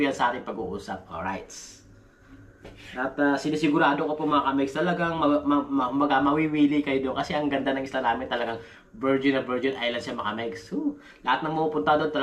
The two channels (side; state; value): both; identical; correlation 1.00